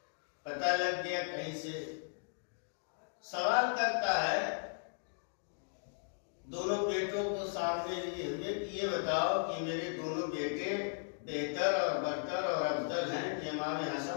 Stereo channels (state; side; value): silent; right; digital silence